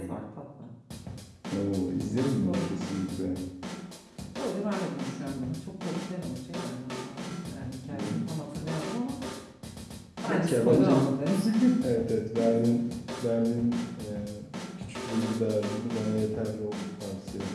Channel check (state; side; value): identical; both; correlation 1.00